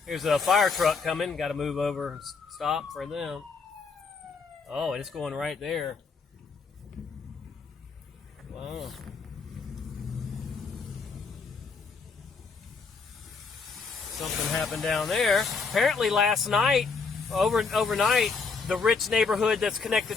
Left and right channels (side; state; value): right; quieter; 4.8 dB